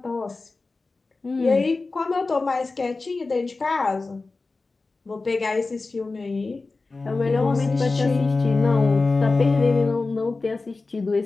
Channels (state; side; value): quieter; right; 3.7 dB